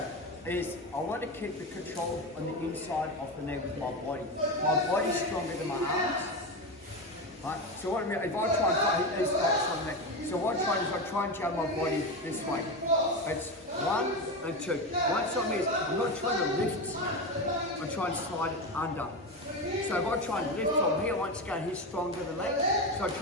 I want to keep the control on the inside of the knee with my body. My body's stronger than my arms. Right? So what I mean, if I try and fight, he's got something. So what I try is I try and jab my body this way. It's 1 and 2. Once I'm here, I'm not trying to lift. I'm trying to slide it under. So if I try and lift from here, once again, he's stronger than me. So I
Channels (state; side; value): normal; both; correlation 0.18